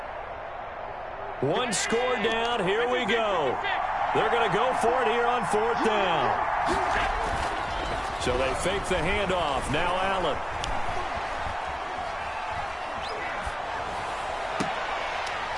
One score down. Here we go. They're going to go for it here on 4th down. So they fake the handoff. Now Allen.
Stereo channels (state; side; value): identical; both; correlation 1.00